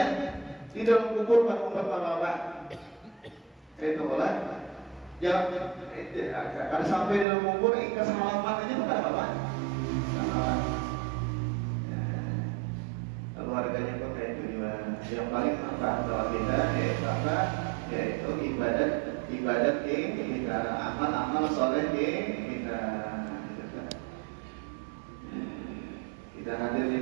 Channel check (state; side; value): drops out; left; at 7.2 s